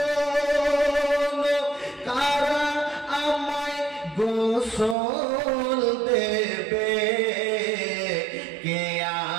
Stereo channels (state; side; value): drops out; left; at 5.0 s